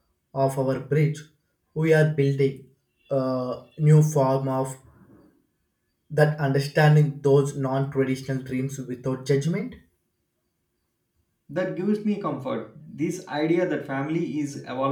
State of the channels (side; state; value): both; identical; correlation 1.00